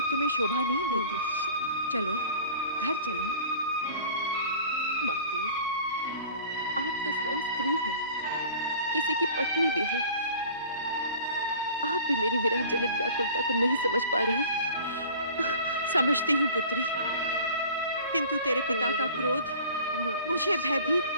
तुम्हें शोभा नहीं देती। चलो घर चलें। माते, आप तो स्वयं स्त्री हैं, किसी की पत्नी भी है। आप भी मेरी विरह जनित व्याकुलता को नहीं समझ पा रही। समझती हूँ पुत्री, किंतु तेरे पिता का क्रोध मुझे भयभीत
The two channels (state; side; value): inverted; both; correlation -0.44